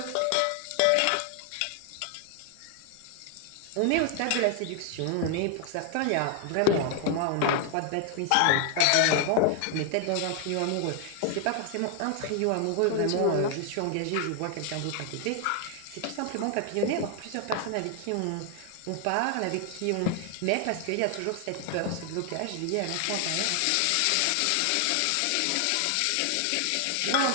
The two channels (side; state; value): both; different; correlation 0.00